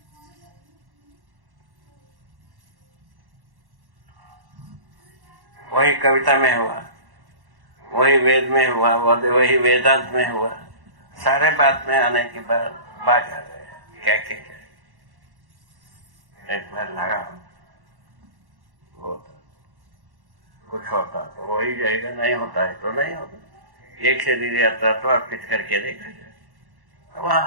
वही कविता में हुआ, वही वेद में हुआ, वही वेदांत में हुआ, सारे बात में आने के बाद बात आ गए। क्या एक बार लगा होता कुछ होता तो वही जाएगा, नहीं होता है तो नहीं होता। एक शरीर यात्रा तो अर्पित करके देखा जाए,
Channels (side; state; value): left; late; 1.1 ms